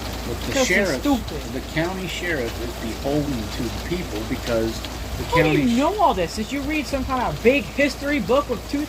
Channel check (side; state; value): both; identical; correlation 1.00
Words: But the Because they're sheriff, stupid. the county sheriff, is beholden to the people because the How do county. you know all this? Did you read some kind of big history book with